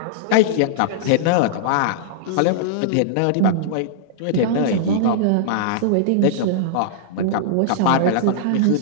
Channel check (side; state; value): both; different; correlation -0.02